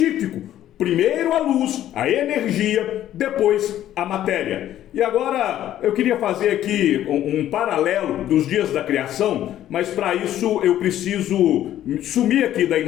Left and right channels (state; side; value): quieter; right; 12.2 dB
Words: Primeiro a luz, a energia, depois a matéria. E agora eu queria fazer aqui um paralelo dos dias da criação, mas para isso eu preciso sumir aqui da